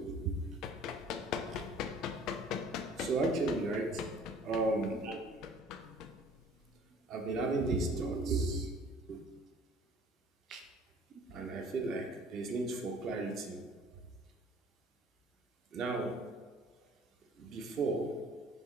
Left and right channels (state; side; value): normal; both; correlation 0.51